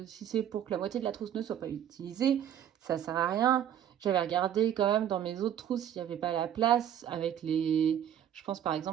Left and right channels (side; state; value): left; quieter; 10.1 dB